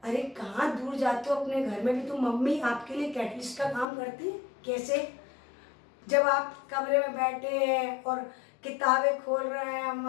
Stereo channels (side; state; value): right; drops out; at 3.9 s